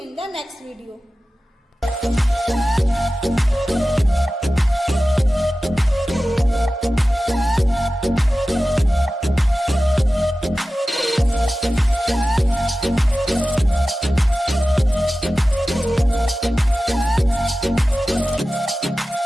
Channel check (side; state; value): both; normal; correlation 0.95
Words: the next video.